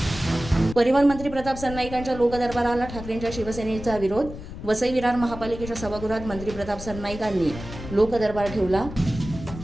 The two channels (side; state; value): left; noise; rumble, 11 dB below the sound